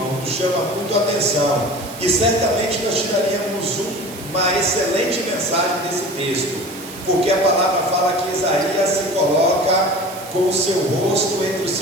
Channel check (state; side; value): noise; right; hiss, 15 dB below the sound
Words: nos chama muito a atenção, e certamente nós tiraríamos uma excelente mensagem desse texto, porque a palavra fala que Isaías se coloca com o seu rosto entre os